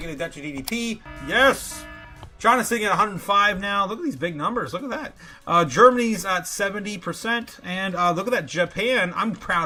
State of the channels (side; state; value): both; identical; correlation 1.00